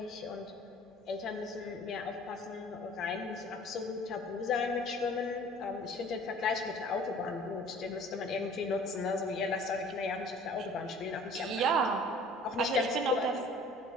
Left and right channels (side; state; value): both; normal; correlation 0.49